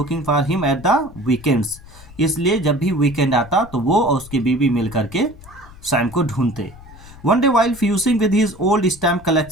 for him at the weekends, इसलिए जब भी वीकेंड आता तो वो और उसकी बीवी मिल करके सैम को ढूंढते। One day while fusing with his old stamp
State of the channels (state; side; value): noise; left; rumble, 19 dB below the sound